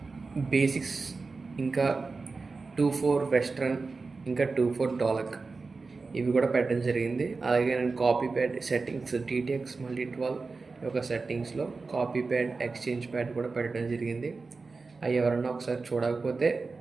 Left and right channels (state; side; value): quieter; left; 4.1 dB